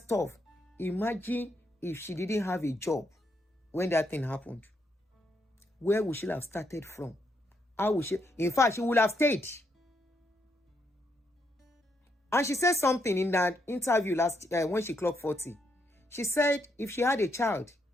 Imagine if she didn't have a job when that thing happened. Where would she have started from? How would she? In fact, she would have stayed. And she said something in that interview when she clocked 40. She said if she had a child,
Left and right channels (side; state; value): both; normal; correlation 0.78